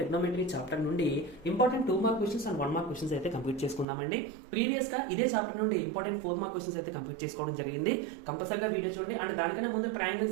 chapter నుండి important 2 mark questions and 1 mark questions అయితే కంప్లీట్ చేసుకుందామండి. ప్రీవియస్ గా ఇదే చాప్టర్ నుండి ఇంపార్టెంట్ 4 మార్క్ క్వశ్చన్స్ అయితే కంప్లీట్ చేసుకోవడం జరిగింది. కంపల్సరీగా వీడియో చూడండి. అండ్ దానికన్నా ముందు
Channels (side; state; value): left; drops out; at 3.9 s